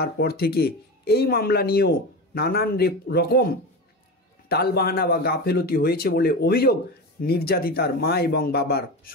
থেকে এই মামলা নিয়েও নানান রকম টালবাহানা বা গাফেলতি হয়েছে বলে অভিযোগ নির্যাতিতার মা এবং বাবার।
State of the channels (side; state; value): both; normal; correlation 0.25